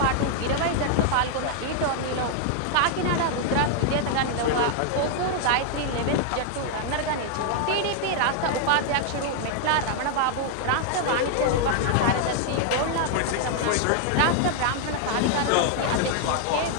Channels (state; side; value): different; both; correlation 0.00